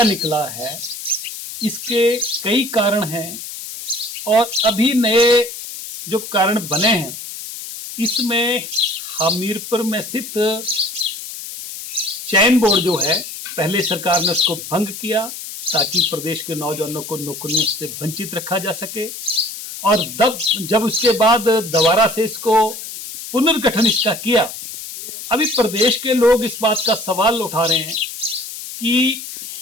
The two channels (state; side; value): noise; left; hiss, 10 dB below the sound